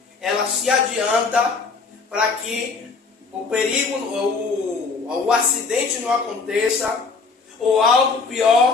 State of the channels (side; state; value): right; quieter; 4.6 dB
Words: ela se adianta para que o perigo, o acidente não aconteça, ou algo